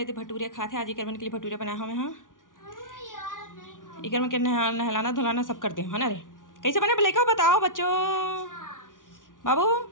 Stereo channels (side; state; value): right; late; 0.88 ms